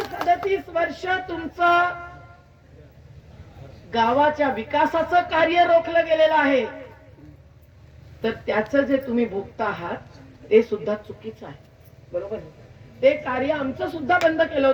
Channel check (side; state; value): both; identical; correlation 1.00